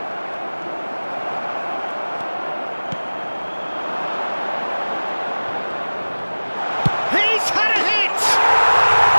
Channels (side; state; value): both; inverted; correlation -1.00